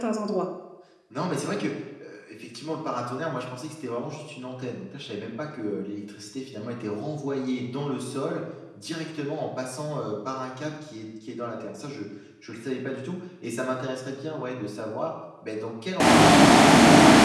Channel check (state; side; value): identical; both; correlation 1.00